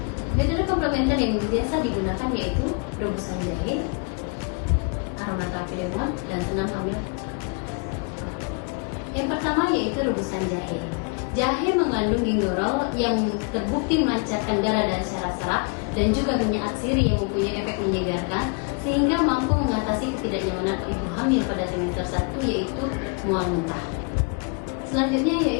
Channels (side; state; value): right; quieter; 34.8 dB